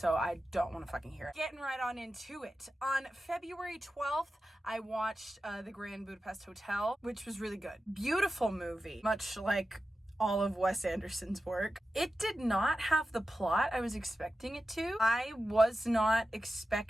I don't want to fucking hear it. Getting right on into it. On February 12th, I watched The Grand Budapest Hotel, which was really good. Beautiful movie, much like all of Wes Anderson's work. It did not have the plot I was expecting it to. I was not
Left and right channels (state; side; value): normal; both; correlation 0.92